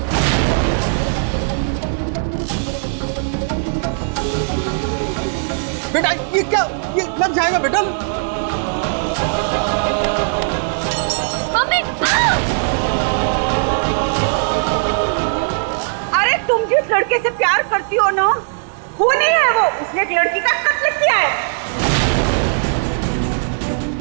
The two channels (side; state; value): left; silent; digital silence